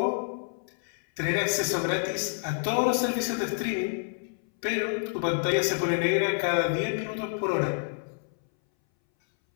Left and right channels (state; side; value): silent; right; 59 dB below the other